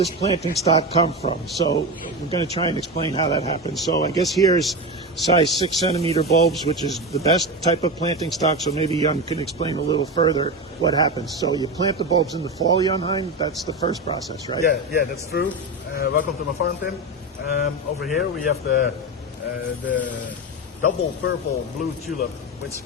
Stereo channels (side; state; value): both; normal; correlation 0.19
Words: planting stock come from? So we're going to try and explain how that happens. So I guess here's size 6 centimeter bulbs, which is the best type of planting stock. So maybe Jan can explain a little further what happens. So you plant the bulbs in the fall, Jan Hein. That's the first process, right? Yeah, that's true. Welcome to my farm, Tim. Over here we have the double purple blue tulip, which